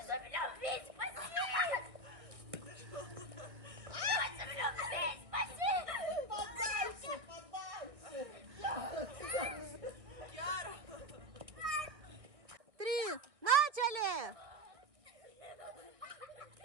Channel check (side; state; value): left; late; 1.9 ms